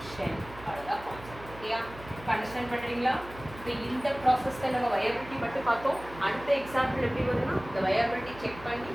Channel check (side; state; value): right; noise; hum, 16 dB below the sound